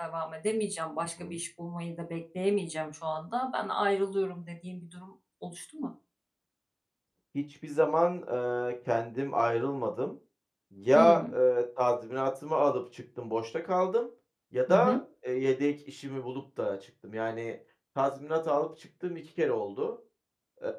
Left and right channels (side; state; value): both; identical; correlation 1.00